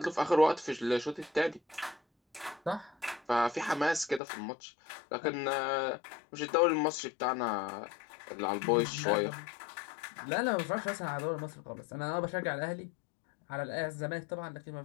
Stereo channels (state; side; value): drops out; right; at 4.2 s